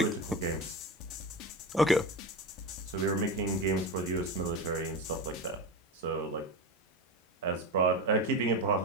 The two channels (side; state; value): both; normal; correlation 0.22